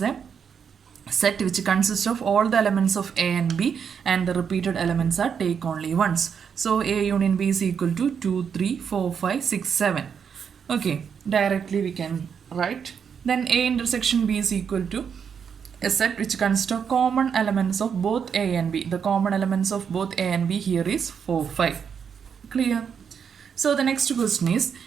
A set which consists of all the elements of A and B and the repeated elements are take only once. So A union B is equal to 2 3 4 5 6 7. Okay, directly we can write. Then A intersection B is equal to a set which consists of common elements of both A and B. The common elements of both A and B here is 4 5. Clear? So the next question is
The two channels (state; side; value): quieter; left; 7.1 dB